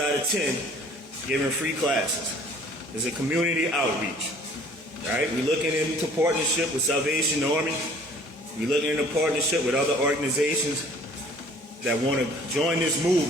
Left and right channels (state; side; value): normal; both; correlation 0.53